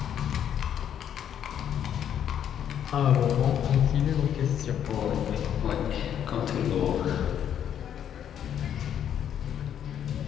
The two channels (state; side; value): quieter; right; 9.5 dB